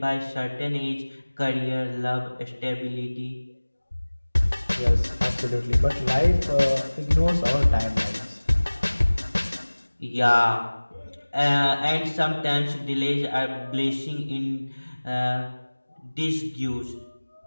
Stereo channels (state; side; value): inverted; both; correlation -1.00